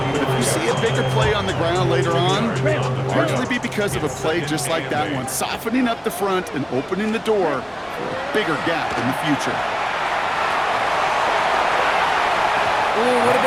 but if you see a bigger play on the ground later on, it'll largely be because of a play just like that one, softening up the front and opening the door for a bigger gap in the future. Ooh, would have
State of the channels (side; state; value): both; identical; correlation 1.00